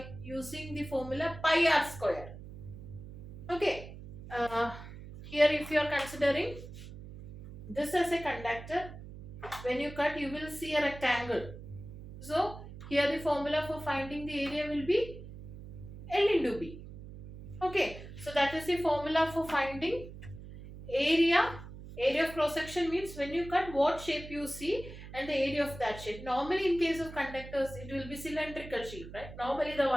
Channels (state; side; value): noise; right; hum, 13 dB below the sound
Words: using the formula pi r square. Okay. Here if you are considering this as a conductor, when you cut you will see a rectangle. So here the formula for finding the area will be L into B. Okay. So that is the formula for finding area. Area of cross section means when you cut what shape you see and the area of that shape. Normally in case of conductors it will be cylindrical shape, right? Normally the